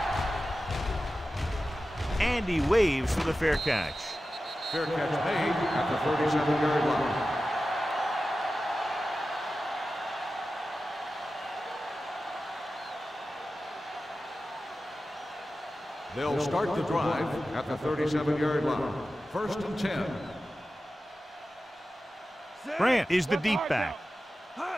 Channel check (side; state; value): both; normal; correlation 0.94